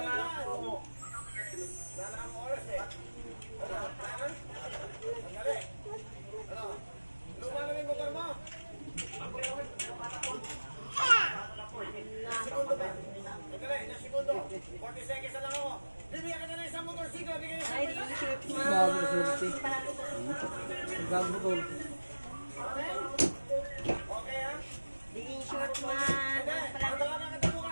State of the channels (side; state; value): both; inverted; correlation -1.00